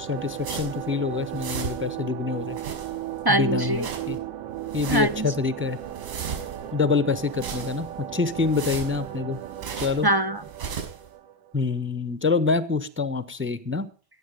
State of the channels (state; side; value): late; left; 1.1 ms